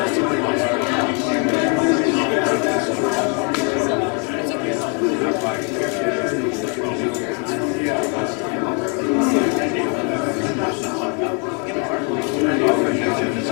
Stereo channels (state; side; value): quieter; right; 37.0 dB